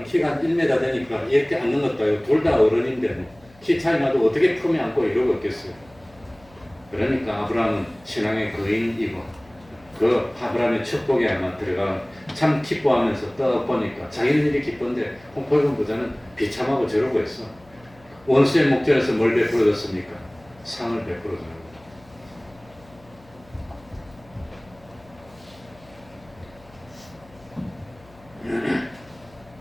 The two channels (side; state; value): left; noise; hum, 26 dB below the sound